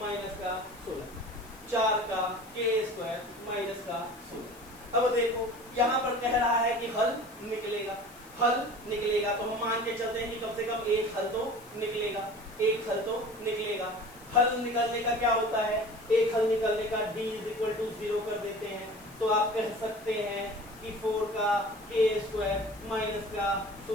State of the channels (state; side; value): noise; left; hiss, 23 dB below the sound